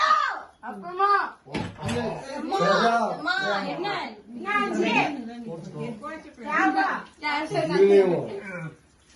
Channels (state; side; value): identical; both; correlation 1.00